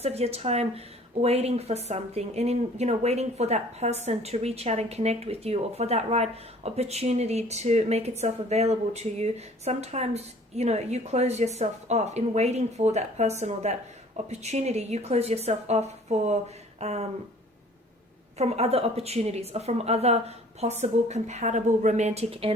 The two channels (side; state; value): both; normal; correlation 0.52